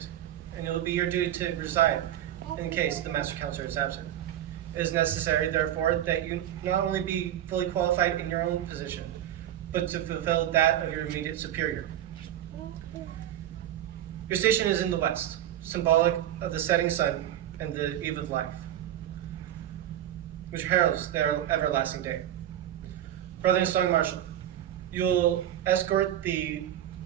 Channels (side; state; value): left; quieter; 11.9 dB